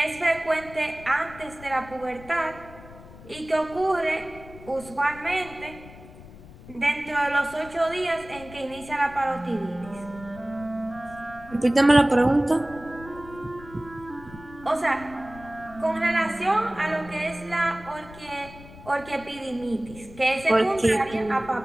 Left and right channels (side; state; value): left; noise; rumble, 18 dB below the sound